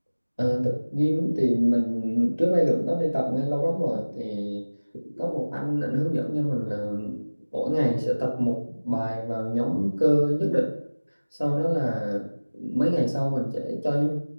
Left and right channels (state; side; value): inverted; both; correlation -1.00